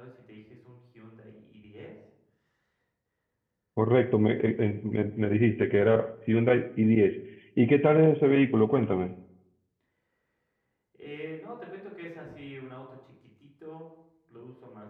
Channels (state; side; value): identical; both; correlation 1.00